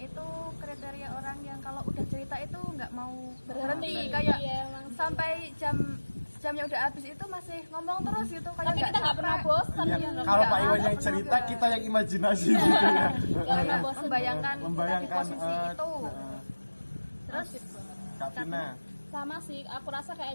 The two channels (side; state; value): both; inverted; correlation -1.00